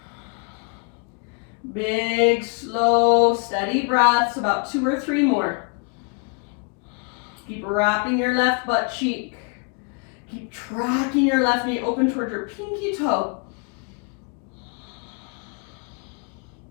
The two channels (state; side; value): quieter; right; 37.4 dB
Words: Big, slow, steady breaths, about 2 or 3 more. Keep wrapping your left butt cheek. Keep tracking your left knee open towards your pinky toe.